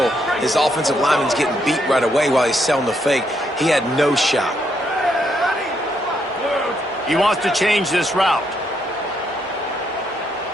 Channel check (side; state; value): both; normal; correlation 0.76